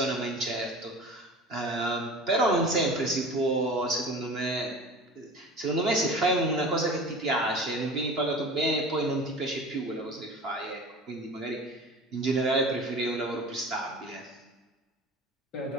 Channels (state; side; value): normal; both; correlation 0.37